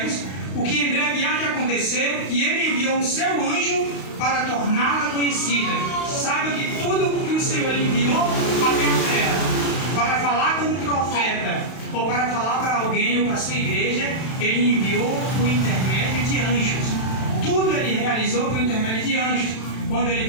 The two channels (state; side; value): late; right; 32 ms